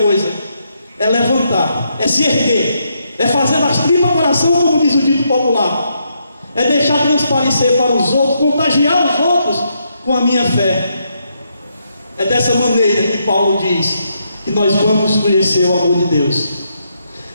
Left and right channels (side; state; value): both; inverted; correlation -0.78